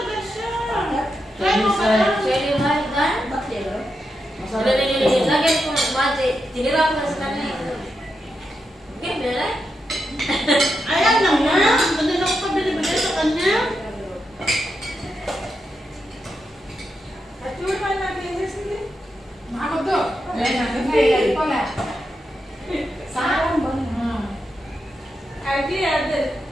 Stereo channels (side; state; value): both; normal; correlation 0.86